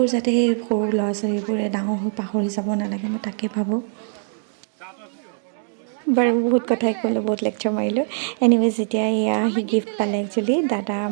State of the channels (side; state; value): left; silent; digital silence